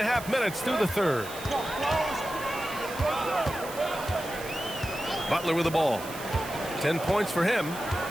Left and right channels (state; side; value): noise; right; hiss, 13 dB below the sound